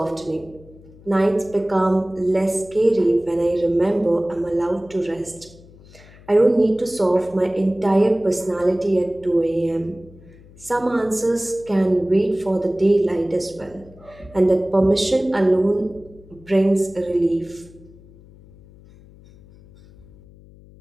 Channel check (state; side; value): noise; left; hum, 23 dB below the sound